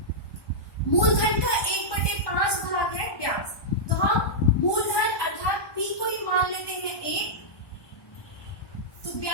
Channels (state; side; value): late; right; 1.2 ms